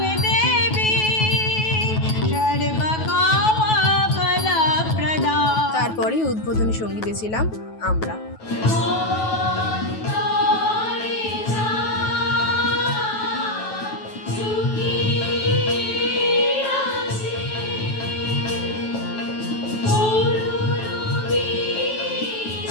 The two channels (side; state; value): right; late; 9.3 ms